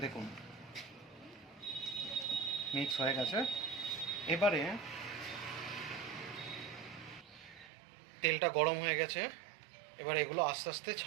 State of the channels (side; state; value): left; drops out; at 7.7 s